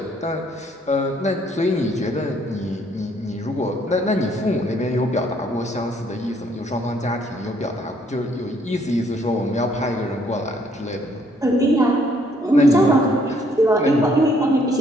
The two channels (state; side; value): normal; both; correlation 0.66